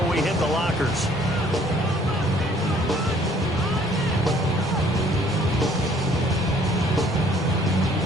we hit the lockers.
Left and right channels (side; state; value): both; normal; correlation 0.59